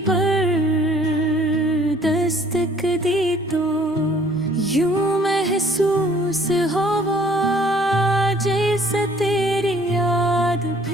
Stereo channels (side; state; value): both; normal; correlation 0.58